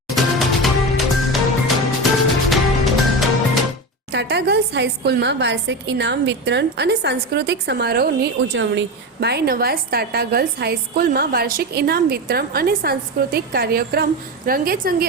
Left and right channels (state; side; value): normal; both; correlation 0.21